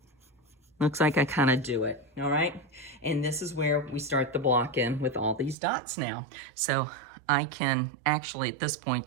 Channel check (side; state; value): left; drops out; at 5.6 s